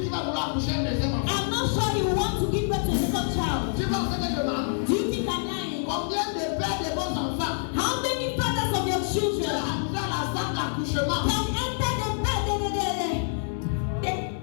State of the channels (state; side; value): silent; right; digital silence